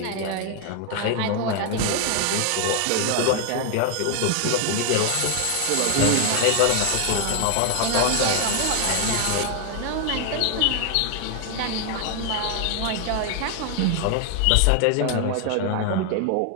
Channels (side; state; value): both; different; correlation 0.00